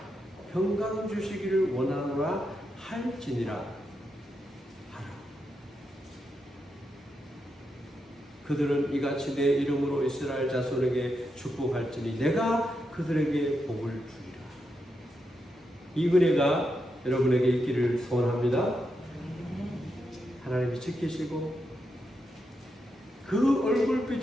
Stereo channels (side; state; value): both; normal; correlation 0.84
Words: 평강 주시기를 원하노라 할지니라 하라. 그들은 이같이 내 이름으로 이스라엘 자손에게 축복할지니 내가 그들에게 복을 주리라. 이 은혜가 여러분에게 있기를 소원합니다. 하나님이 지키시고 그